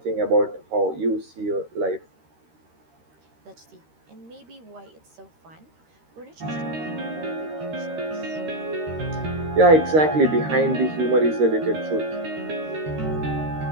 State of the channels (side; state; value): left; late; 13 ms